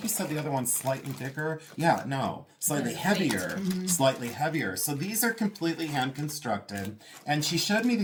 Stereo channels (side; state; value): both; identical; correlation 1.00